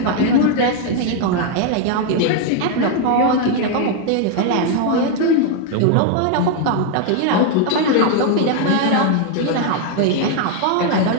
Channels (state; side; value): different; both; correlation 0.01